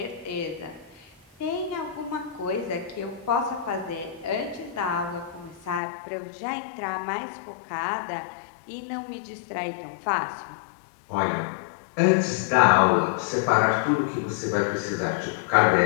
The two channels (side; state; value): right; drops out; at 5.8 s